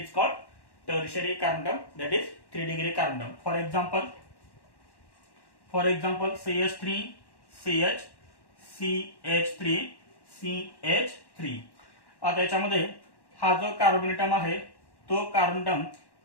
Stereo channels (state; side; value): late; right; 1.1 ms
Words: called tertiary carbon atom that is 3 degree carbon atom. For example CH3 CH CH3 CH3. आता याच्यामध्ये हा जो कार्बन ॲटम आहे तो कार्बन ॲटम